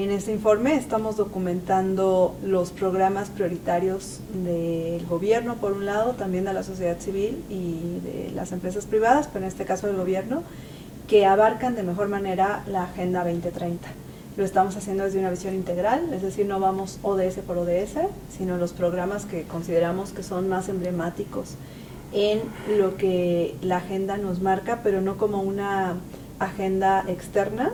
este informe estamos documentando los programas prioritarios del gobierno, por un lado, también de la sociedad civil y de las empresas privadas, pero en este caso del gobierno, que abarcan de mejor manera la Agenda 2030. Lo estamos haciendo desde una visión integral, es decir, no vamos ODS por ODS, sino los programas que consideramos que son más emblemáticos en lo que la agenda nos marca, pero no como una agenda externa,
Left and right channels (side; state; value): both; identical; correlation 1.00